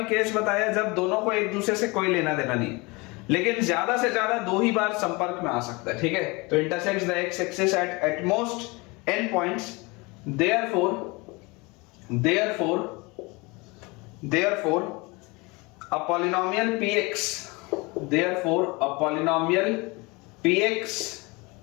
केस बताया जब दोनों को एक दूसरे से कोई लेना देना नहीं, लेकिन ज्यादा से ज्यादा 2 ही बार संपर्क में आ सकता है। ठीक है, तो intersects the x axis at most n points, therefore a polynomial px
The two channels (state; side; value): quieter; right; 25.9 dB